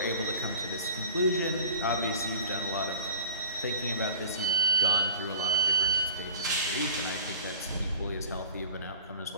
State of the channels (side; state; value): both; inverted; correlation -0.44